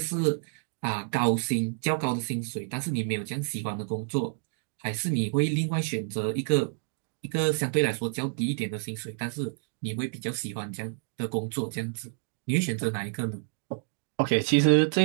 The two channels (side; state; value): left; silent; digital silence